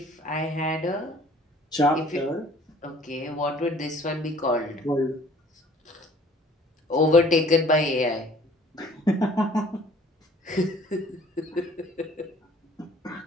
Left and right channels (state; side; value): normal; both; correlation 0.54